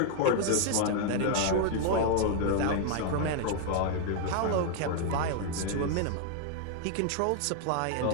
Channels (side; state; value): both; different; correlation 0.00